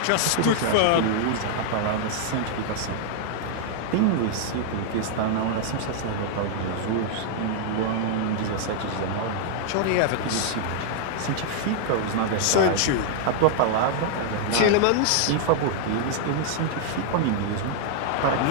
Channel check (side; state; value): both; different; correlation -0.01